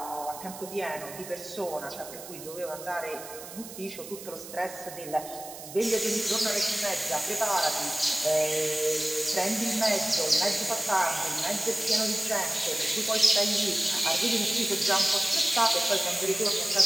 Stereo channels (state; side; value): noise; right; hiss, 13 dB below the sound